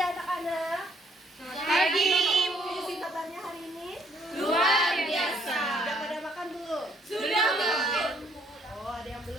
Selamat pagi, Ibu. Isi kabarnya hari ini? Luar biasa. Sudah pada makan belum? Sudah, Bu. Oh, ada yang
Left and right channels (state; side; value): normal; both; correlation 0.65